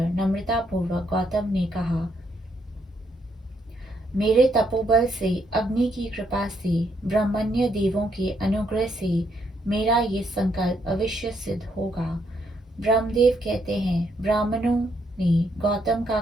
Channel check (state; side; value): normal; both; correlation 0.74